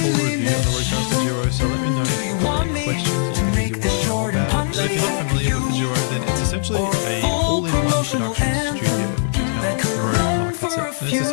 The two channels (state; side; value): silent; right; digital silence